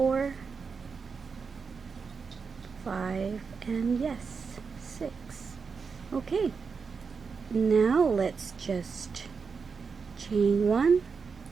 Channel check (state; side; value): quieter; left; 5.4 dB